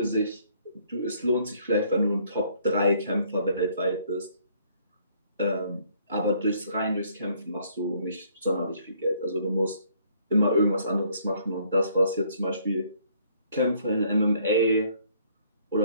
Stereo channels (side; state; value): both; inverted; correlation -0.63